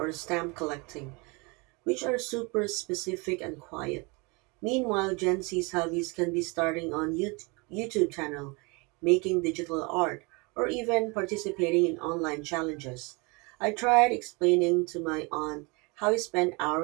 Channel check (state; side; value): quieter; left; 28.5 dB